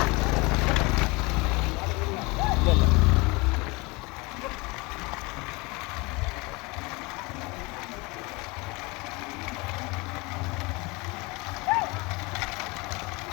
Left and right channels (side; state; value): right; quieter; 25.7 dB